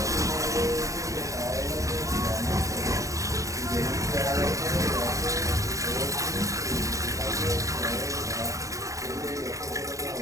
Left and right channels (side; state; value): left; late; 0.16 ms